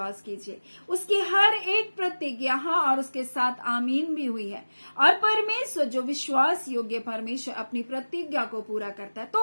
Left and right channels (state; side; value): inverted; both; correlation -1.00